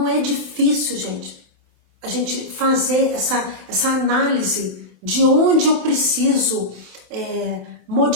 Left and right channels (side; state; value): left; late; 28 ms